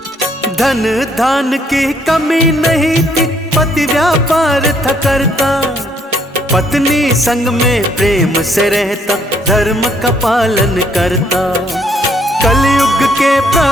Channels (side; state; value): both; normal; correlation 0.68